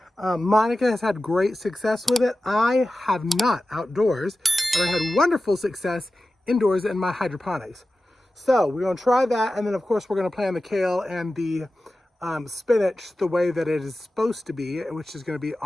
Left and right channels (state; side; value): normal; both; correlation 0.94